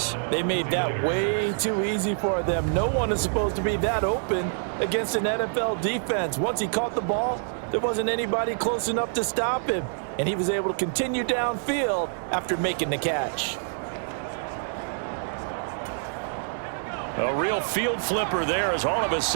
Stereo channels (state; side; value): silent; left; digital silence